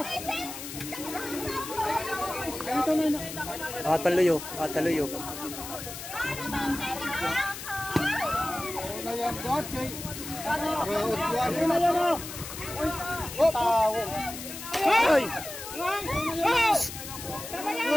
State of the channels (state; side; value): noise; left; hiss, 10 dB below the sound